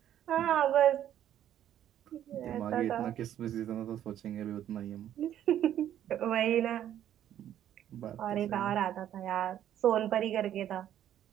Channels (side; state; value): left; quieter; 11.1 dB